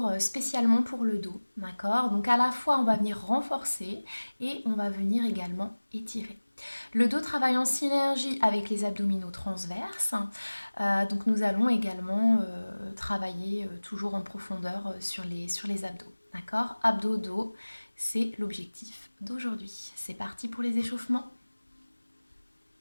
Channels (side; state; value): both; inverted; correlation -1.00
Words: spécialement pour le dos, d'accord? Donc à la fois on va venir renforcer et on va venir également étirer. Le dos travaille en synergie avec les abdominaux transverses, donc nous allons également travailler toujours en profondeur sur les abdos, d'accord? Abdos-dos, c'est l'objectif d'aujourd'hui. C'est parti pour les échauffements.